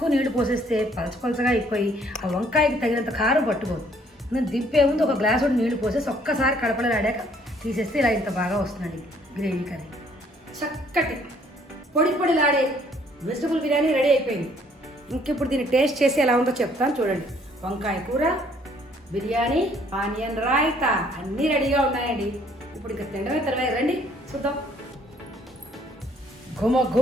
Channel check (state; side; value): normal; both; correlation 0.62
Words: నీళ్లు పోసేస్తే పలచగా అయిపోయి ఆ వంకాయకి తగినంత కారం పట్టుకోదు. నేను దింపే ముందు ఒక గ్లాసు నీళ్లు పోసేసి ఒక్కసారి కడపలో ఆడాక తీసేస్తే ఇలా ఇంత బాగా వస్తుందండి గ్రేవీ కర్రీ. చక్కటి పొడిలాడే వెజిటబుల్ బిర్యానీ రెడీ అయిపోయింది. ఇంకిప్పుడు దీన్ని టేస్ట్ చేసి ఎలా ఉందో చెప్తాను చూడండి. వంకాయ కూర, బిర్యానీ, ఆనియన్ రాయితా అన్నీ రెడీగా ఉన్నాయండి. ఇప్పుడు ఇంకా తినడమే తర్వాత రండి చూద్దాం.